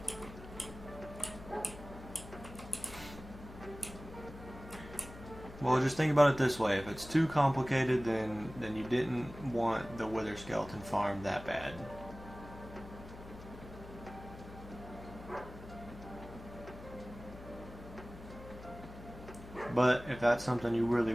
Well, just think about it this way. If it's too complicated, then you didn't want the Wither Skeleton farm that bad. But if that's something you really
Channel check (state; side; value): noise; left; hum, 15 dB below the sound